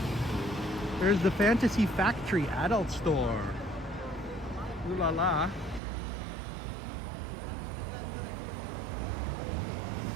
There's the Fantasy Factory adult store. Ooh la la.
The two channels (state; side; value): drops out; left; at 5.8 s